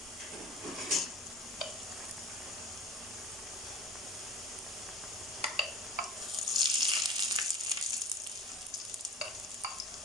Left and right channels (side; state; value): both; normal; correlation 0.40